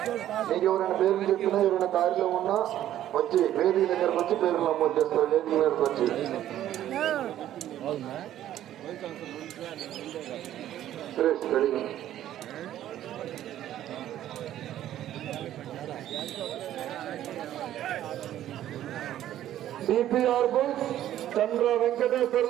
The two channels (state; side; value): quieter; left; 12.3 dB